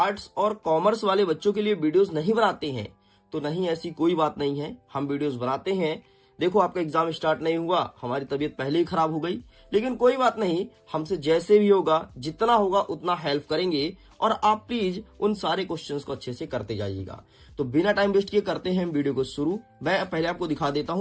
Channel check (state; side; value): identical; both; correlation 1.00